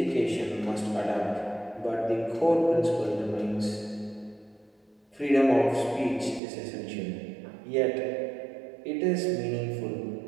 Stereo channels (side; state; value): left; drops out; at 6.4 s